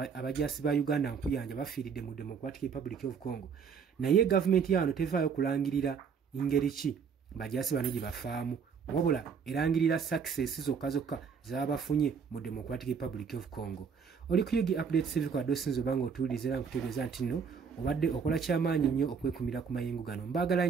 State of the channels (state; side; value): quieter; left; 6.3 dB